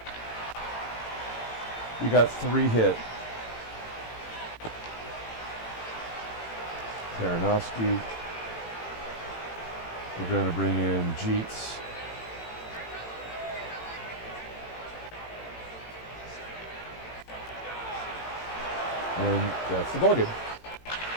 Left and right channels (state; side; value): late; right; 18 ms